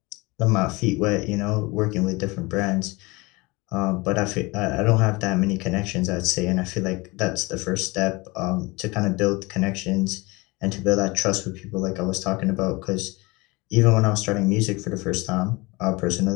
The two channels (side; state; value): right; quieter; 24.3 dB